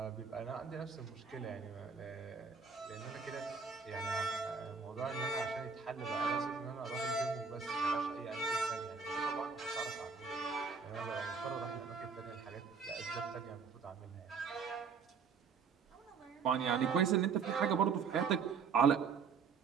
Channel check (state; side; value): quieter; left; 5.6 dB